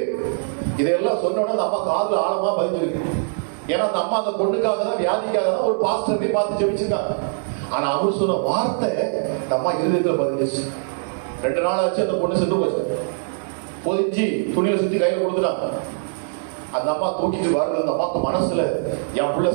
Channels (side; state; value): left; silent; 58 dB below the other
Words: இதெல்லாம் சொன்ன உடனே அம்மா காதுல ஆழமா பதிஞ்சிருக்கு. ஏன்னா அந்த அம்மா அந்த பொண்ணுக்காக தான், வியாதிக்காக தான் ஒரு பாஸ்டரை பார்த்து ஜெபிச்சிருக்காங்க. ஆனா அவர் சொன்ன வார்த்தை அந்த அம்மா இருதயத்துல பதிஞ்சிச்சு. 2 நாள் ஆச்சு, அந்த பொண்ணு செத்து போச்சு. பொதிச்சு துணியில சுத்தி கையில கொடுத்துட்டாங்க. அந்த அம்மா தூக்கிட்டு வருது. அந்த அம்மாக்கு மனசுல என் புள்ள